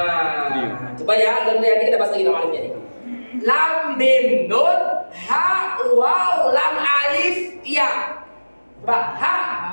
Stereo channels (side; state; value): both; inverted; correlation -1.00